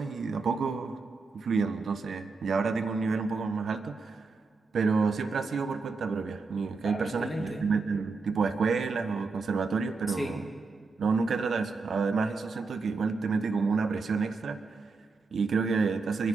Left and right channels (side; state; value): left; quieter; 4.3 dB